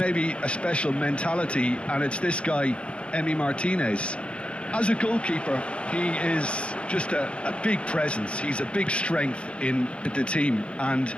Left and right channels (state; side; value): late; right; 0.059 ms